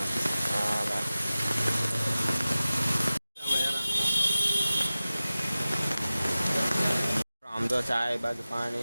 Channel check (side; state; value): both; inverted; correlation -0.96